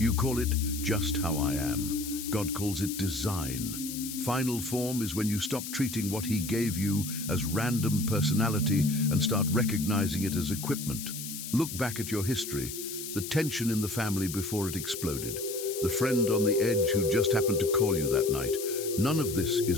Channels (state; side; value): noise; left; hiss, 8 dB below the sound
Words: call it just how I am. God calls it design. Final form is when you stop treating what He gave you as random personality and start recognizing it as equipment. Look back at your history, the tension in the family before it exploded, the friend on the edge who just happened to call you that night. None of this